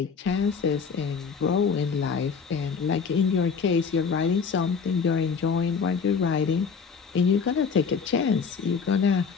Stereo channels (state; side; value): quieter; right; 5.8 dB